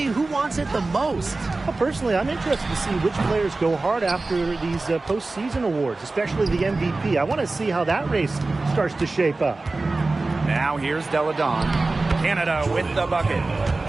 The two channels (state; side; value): quieter; left; 3.4 dB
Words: who wants it the most. Well, personally, I'm interested to see which players go hard after these postseason awards, especially the MVP. I want to see how that race starts to shape up. Now here's Delle Donne. Canada with the bucket.